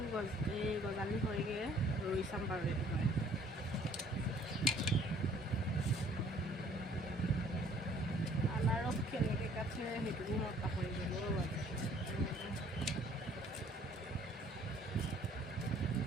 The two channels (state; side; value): normal; both; correlation 0.58